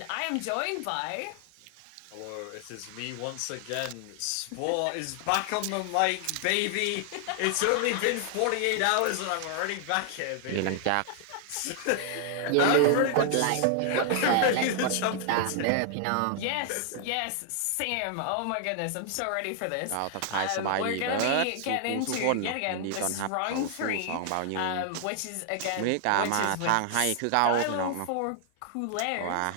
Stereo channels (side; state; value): both; different; correlation 0.00